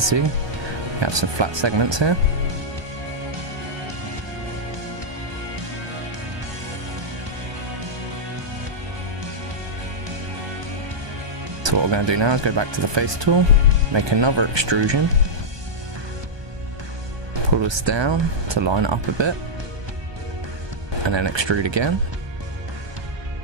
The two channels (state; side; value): late; left; 1.2 ms